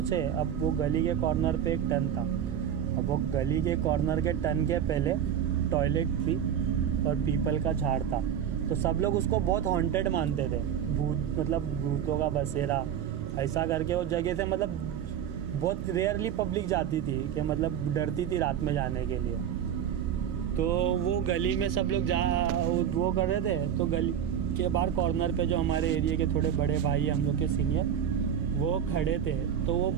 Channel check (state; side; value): quieter; left; 9.2 dB